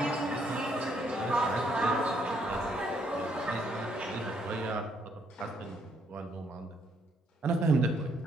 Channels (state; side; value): normal; both; correlation 0.71